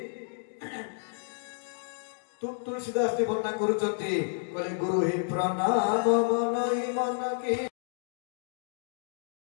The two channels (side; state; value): right; silent; digital silence